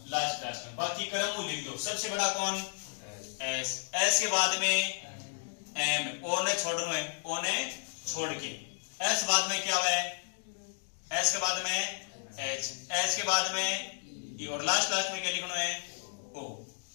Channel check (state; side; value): silent; right; digital silence